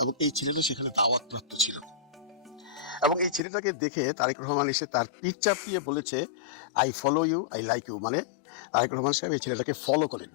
এবং এই ছেলেটা সেখানে দাওয়াত প্রাপ্ত ছিল। এবং এই ছেলেটাকে দেখে তারেক রহমান এসে তার পিঠ চাপিয়ে বলেছে, I follow you, I like you. মানে তারেক রহমান সাহেব এই ছেলেটাকে ফলো করেন।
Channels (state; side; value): drops out; right; at 3.4 s